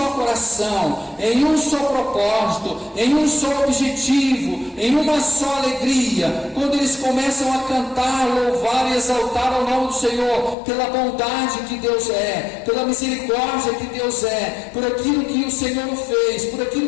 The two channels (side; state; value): right; drops out; at 10.6 s